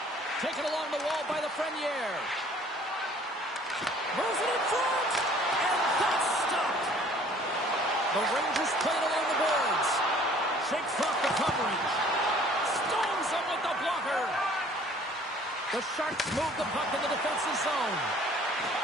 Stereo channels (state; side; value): normal; both; correlation 0.54